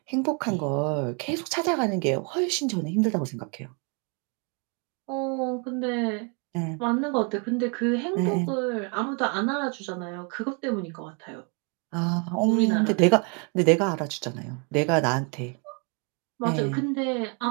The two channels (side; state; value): left; quieter; 35.6 dB